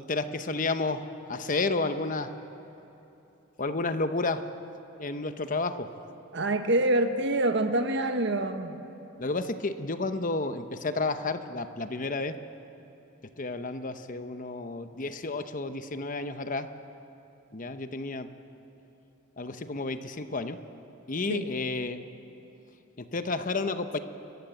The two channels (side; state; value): both; normal; correlation -0.01